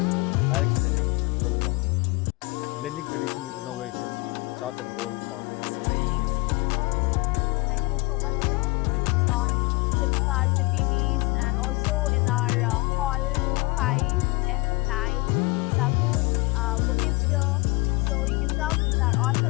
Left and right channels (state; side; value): quieter; right; 24.8 dB